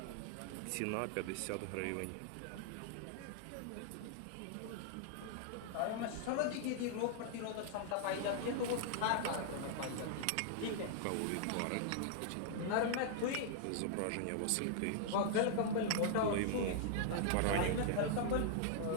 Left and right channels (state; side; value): different; both; correlation -0.01